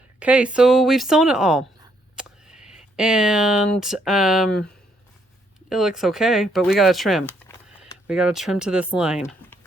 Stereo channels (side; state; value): both; normal; correlation 0.72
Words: Okay, so we've sewn it all. And it looks okay, but we gotta trim. We gotta trim to this line.